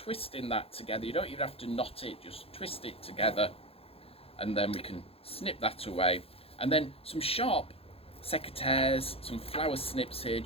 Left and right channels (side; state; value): right; late; 0.28 ms